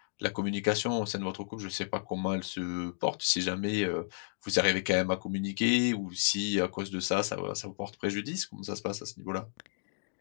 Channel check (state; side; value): silent; right; digital silence